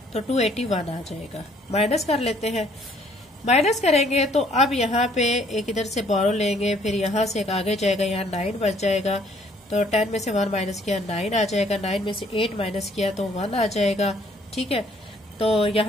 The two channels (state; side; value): normal; both; correlation 0.62